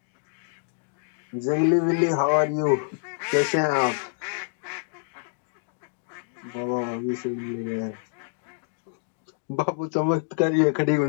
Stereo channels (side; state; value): right; silent; 60 dB below the other